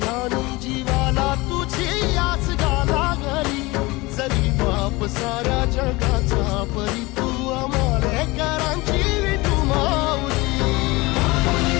ध्यानी जीवाला तुझी आस गाला गली जरी बाप साऱ्या जगाचा परी तू आमालेकरांची विठू माऊली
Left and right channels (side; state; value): right; quieter; 22.6 dB